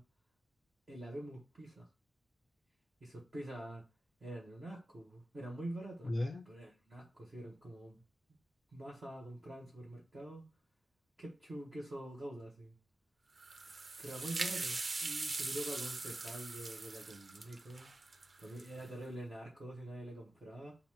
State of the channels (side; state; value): both; normal; correlation 0.93